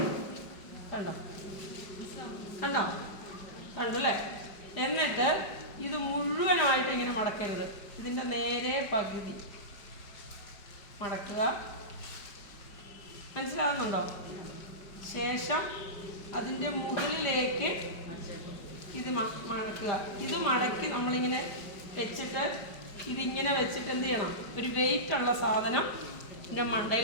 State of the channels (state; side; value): late; right; 5.1 ms